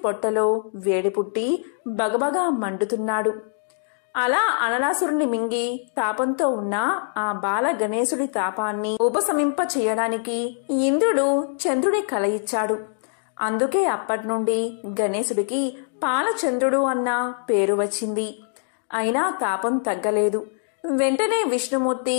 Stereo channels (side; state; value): right; silent; digital silence